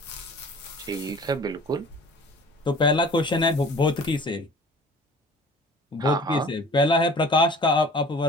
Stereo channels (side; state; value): both; normal; correlation 0.46